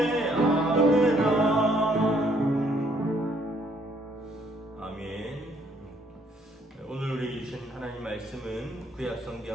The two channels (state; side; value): normal; both; correlation 0.66